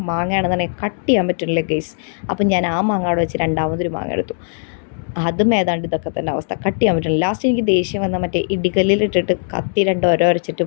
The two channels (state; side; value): silent; right; digital silence